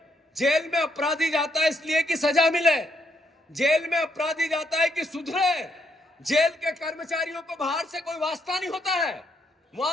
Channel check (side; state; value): both; normal; correlation 0.75